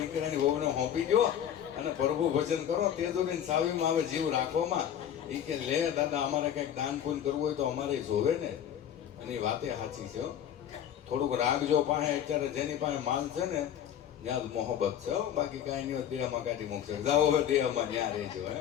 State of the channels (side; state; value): right; quieter; 9.8 dB